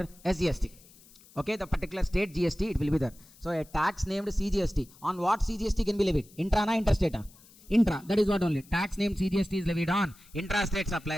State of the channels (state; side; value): noise; left; hiss, 25 dB below the sound